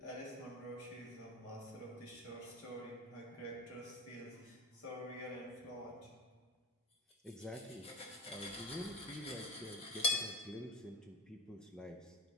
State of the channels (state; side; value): normal; both; correlation 0.31